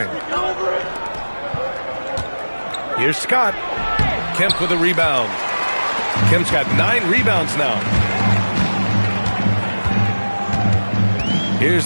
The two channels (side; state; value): both; inverted; correlation -1.00